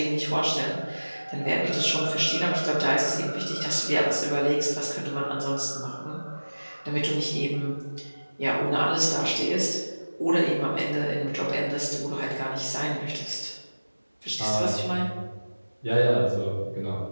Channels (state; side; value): inverted; both; correlation -1.00